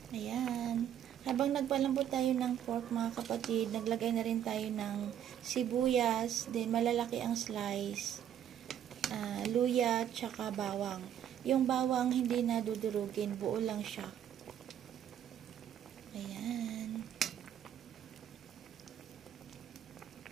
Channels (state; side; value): quieter; left; 10.1 dB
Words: Ayan. Habang nagpalambot tayo ng pork mga kapatid, naglagay na rin tayo ng sibuyas, then malalaki ang slice, luya, tsaka bawang. Yung bawang hindi na dudurugin, buo lang siya. Ayan.